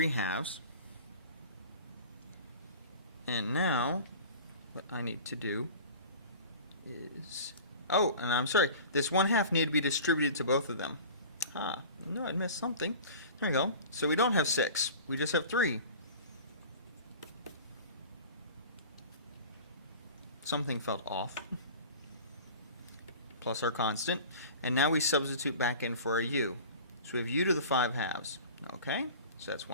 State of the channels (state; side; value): inverted; both; correlation -0.40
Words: And now what I need to do is, oh, and I'm sorry, this 1/2 need to be distributed to both of them. No, I missed something. There we go. So we don't have 6, we just have 3. Something felt off. Plus our constant. And now we substitute back in for a u. So we have u to the 5/2. Okay, so that's